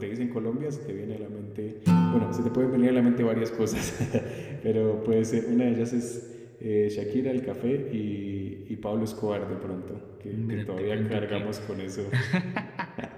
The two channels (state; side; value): identical; both; correlation 1.00